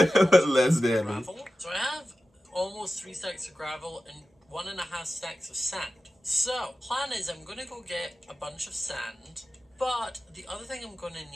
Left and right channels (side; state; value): both; normal; correlation 0.94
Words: less deadly. Gravel. So I have almost 3 stacks of gravel and 1.5 stacks of sand. So, plan is I'm going to go get a bunch of sand, but the other thing I'm going to